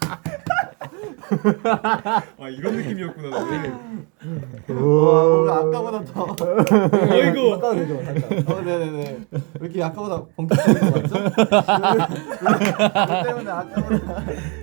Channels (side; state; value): left; quieter; 33.1 dB